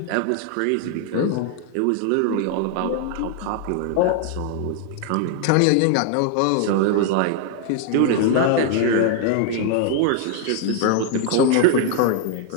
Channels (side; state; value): both; different; correlation 0.00